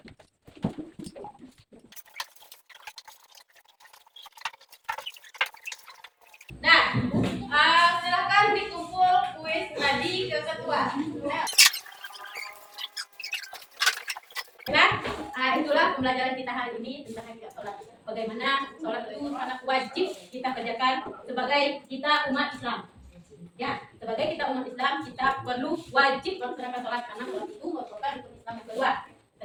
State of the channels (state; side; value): identical; both; correlation 1.00